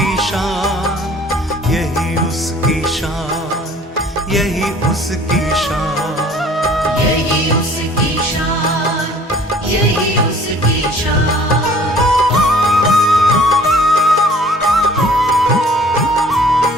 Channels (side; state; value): both; normal; correlation 0.52